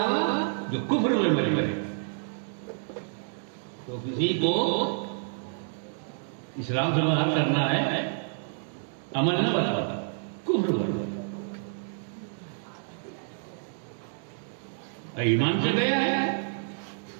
جو کفر میں مرے. تو کسی کو اسلام سے باہر کرنا ہے، عمل نہ بتاتا، کفر بتا. ایمان سے گیا ہے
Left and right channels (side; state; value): left; silent; digital silence